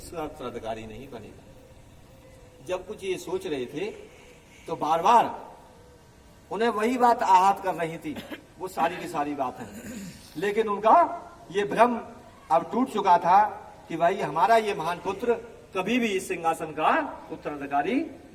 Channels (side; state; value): both; identical; correlation 1.00